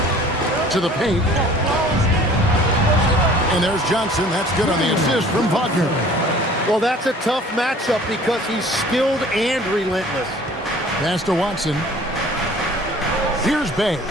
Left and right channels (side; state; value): both; normal; correlation 0.50